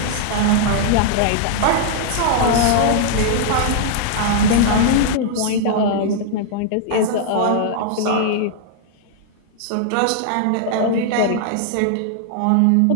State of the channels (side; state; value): both; different; correlation -0.01